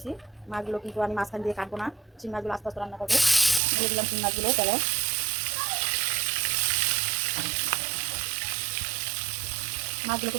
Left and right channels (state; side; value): drops out; left; at 3.6 s